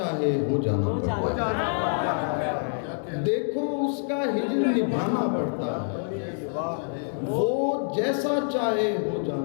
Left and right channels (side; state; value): right; silent; digital silence